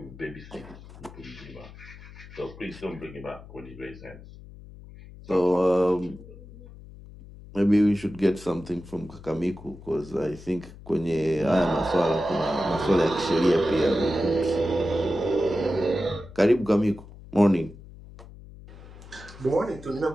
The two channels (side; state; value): left; noise; hum, 18 dB below the sound